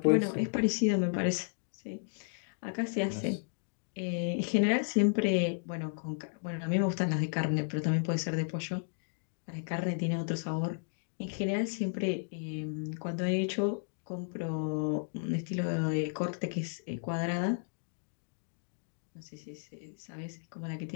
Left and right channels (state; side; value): silent; right; digital silence